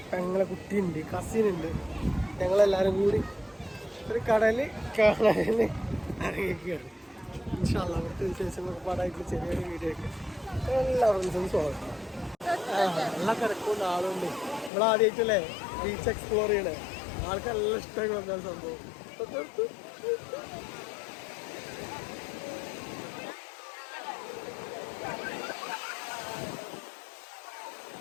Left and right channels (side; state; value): right; drops out; at 14.7 s